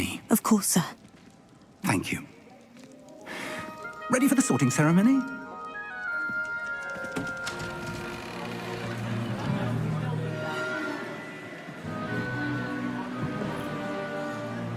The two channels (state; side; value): identical; both; correlation 1.00